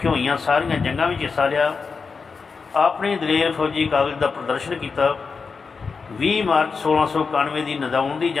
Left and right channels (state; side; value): quieter; right; 5.0 dB